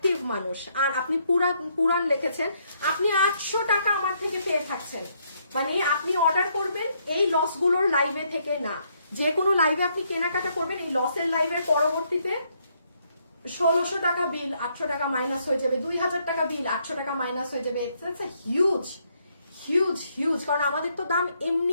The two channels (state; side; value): inverted; both; correlation -0.72